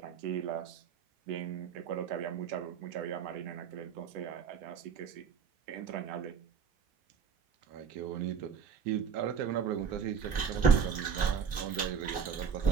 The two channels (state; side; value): quieter; left; 6.9 dB